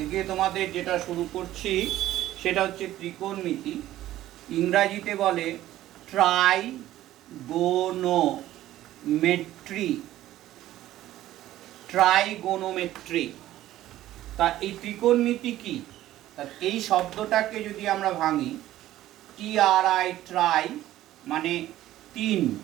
তোমাদের যেটা শুরু করছি সেটা হচ্ছে ত্রিকোণমিতি। ইংরাজিতে বলে ট্রাইগোনোমেট্রি। ট্রাইগোনোমেট্রি। তা এই ত্রিকোণমিতি কি? তা এই শব্দটাকে যদি আমরা ভাঙি, TRI ট্রাই মানে তিন,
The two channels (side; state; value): left; quieter; 14.1 dB